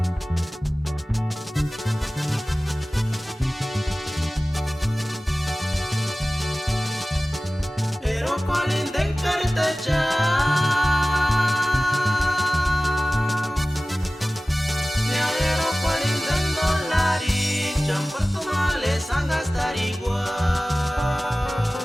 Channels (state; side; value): normal; both; correlation 0.97